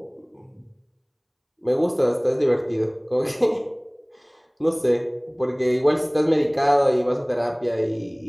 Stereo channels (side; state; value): both; identical; correlation 1.00